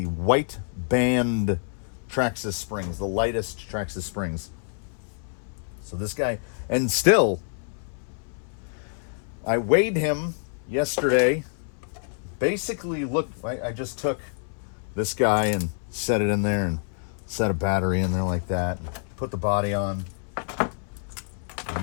white band Traxxas springs, the lightest Traxxas springs. So this guy, and still, I weighed him yesterday. Basically, look, I just took this guy and set it in there and set a battery in there like that. Put the body on.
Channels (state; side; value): silent; right; 60 dB below the other